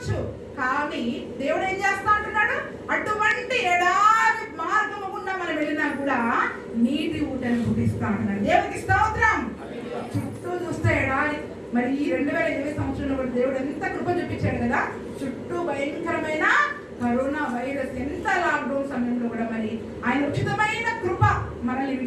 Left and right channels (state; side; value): identical; both; correlation 1.00